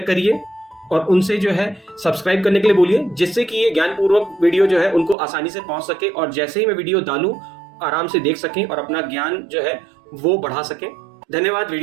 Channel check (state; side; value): drops out; left; at 5.2 s